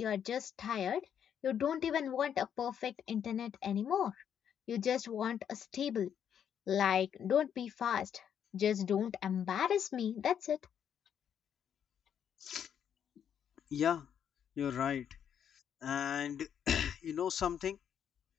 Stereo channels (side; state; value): right; quieter; 8.7 dB